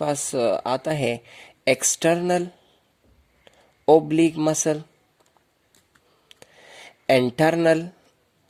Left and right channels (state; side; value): identical; both; correlation 1.00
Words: आता है external oblique muscle, internal